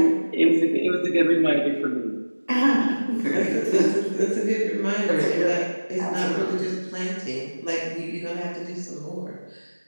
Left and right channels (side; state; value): both; inverted; correlation -1.00